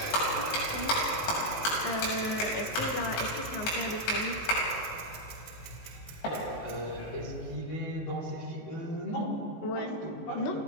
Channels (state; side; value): late; right; 19 ms